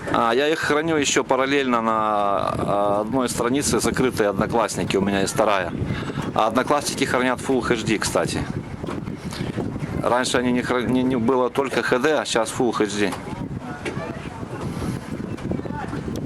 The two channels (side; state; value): both; identical; correlation 1.00